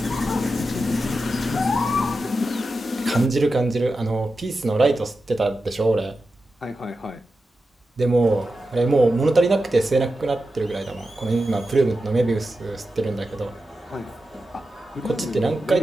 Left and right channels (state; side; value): normal; both; correlation 0.91